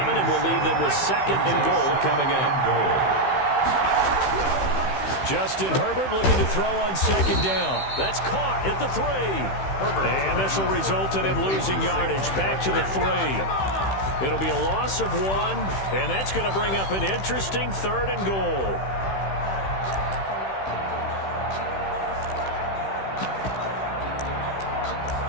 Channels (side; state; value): right; late; 15 ms